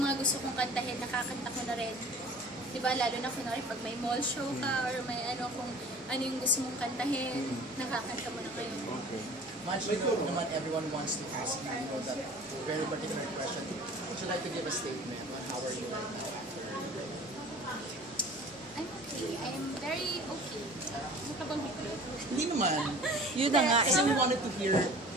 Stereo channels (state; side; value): normal; both; correlation 0.44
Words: gusto kong kantahin, nakakanta ko na rin. Diba, lalo na kunwari pag may mall show ka or may ano, kung ano yung gusto mong kantahin, nakakanta mo na kayo. Much, you know, naman everyone wants to ask you, you know, that very particular question. Would you like to give a statement on how are you right now after? I'm okay. I'm very okay. Ano ka bang higit? Hindi naman. Yun na nga. Kasi we wanted to hear